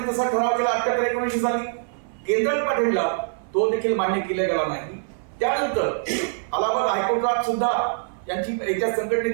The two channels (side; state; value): left; silent; 58 dB below the other